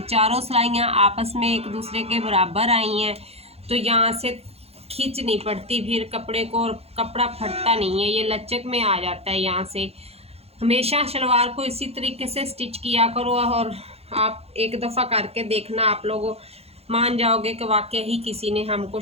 चारों सिलाइयाँ आपस में एक दूसरे के बराबर आई हैं, तो यहाँ से खींच नहीं पड़ती फिर कपड़े को, और कपड़ा फटता नहीं है, ये लचक में आ जाता है। यहाँ से हमेशा शलवार को इसी तरीके से स्टिच किया करो और आप एक दफ़ा करके देखना, आप लोग मान जाओगे कि वाकई ही किसी ने हमको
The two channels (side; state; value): left; late; 0.29 ms